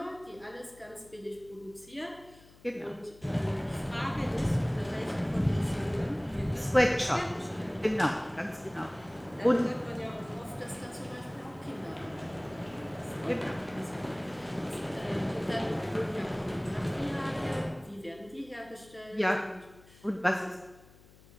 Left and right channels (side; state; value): left; noise; hum, 24 dB below the sound